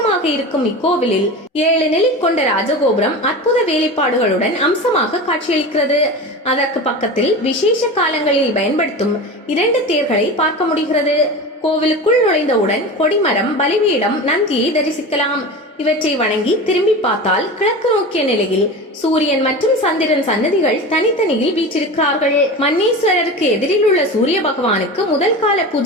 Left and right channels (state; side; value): normal; both; correlation 0.29